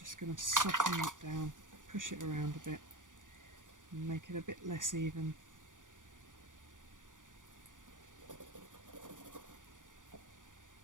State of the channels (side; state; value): left; late; 0.88 ms